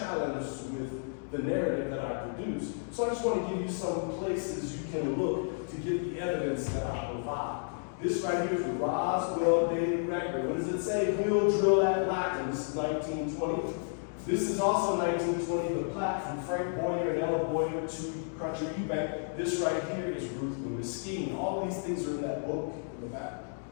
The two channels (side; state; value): right; silent; digital silence